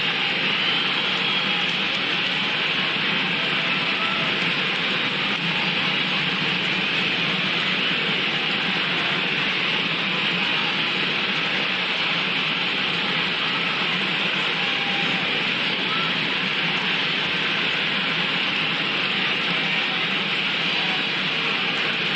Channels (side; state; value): both; identical; correlation 1.00